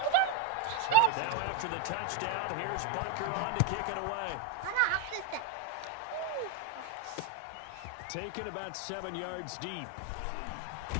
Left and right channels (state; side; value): different; both; correlation -0.01